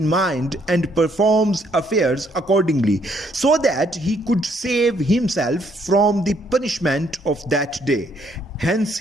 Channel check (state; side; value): normal; both; correlation 0.69